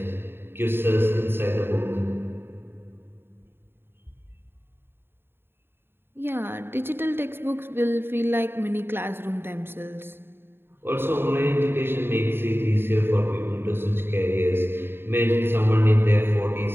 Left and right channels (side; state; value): left; late; 0.11 ms